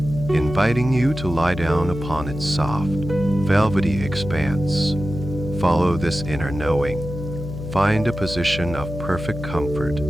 you to lie down upon its soft, velvety expanse. Follow this inner knowing. Find a position of perfect comfort,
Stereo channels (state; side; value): noise; left; hum, 8 dB below the sound